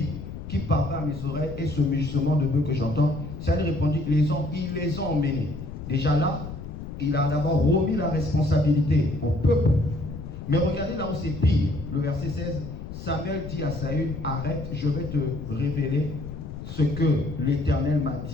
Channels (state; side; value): noise; left; rumble, 10 dB below the sound